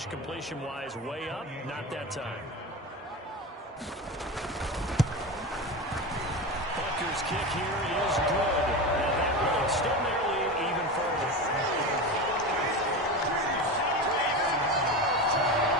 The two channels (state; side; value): normal; both; correlation 0.24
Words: completion-wise way up. Not that time. Butker's kick here is good. And that will extend their lead even further.